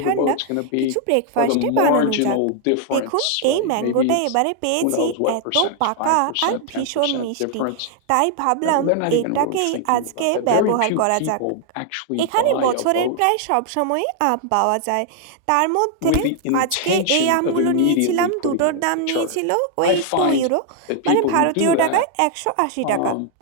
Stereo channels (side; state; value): both; different; correlation 0.00